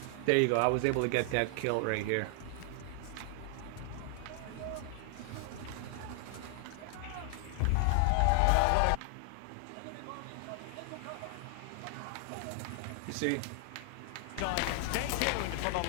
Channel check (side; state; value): both; different; correlation 0.00